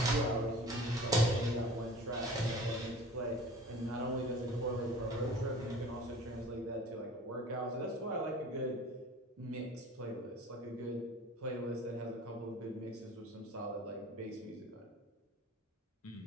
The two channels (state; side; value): normal; both; correlation 0.43